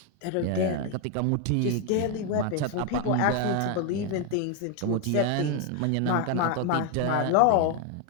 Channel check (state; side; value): different; both; correlation 0.01